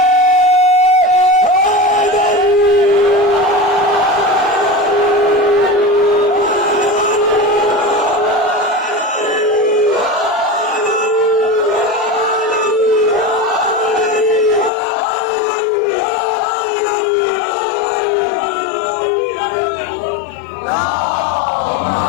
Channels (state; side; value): drops out; right; at 14.7 s